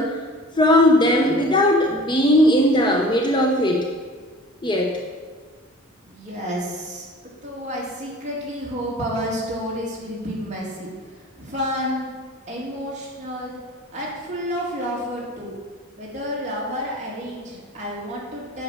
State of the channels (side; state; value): both; normal; correlation 0.44